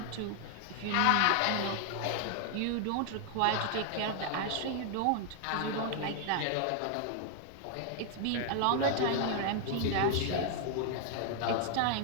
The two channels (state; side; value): different; both; correlation 0.00